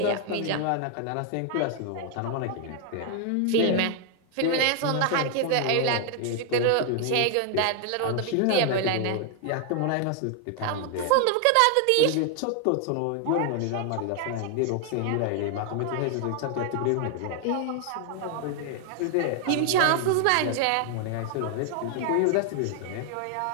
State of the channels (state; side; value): different; both; correlation 0.00